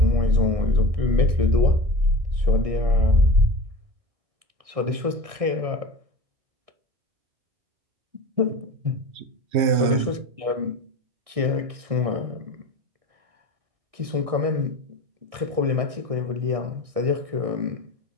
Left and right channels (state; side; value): late; left; 1.6 ms